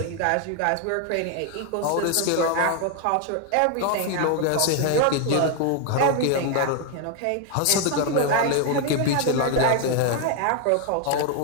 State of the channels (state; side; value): different; both; correlation 0.01